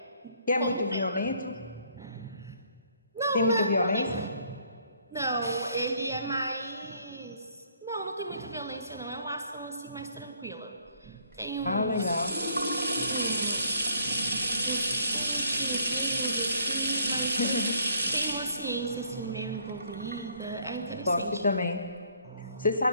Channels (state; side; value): inverted; both; correlation -0.63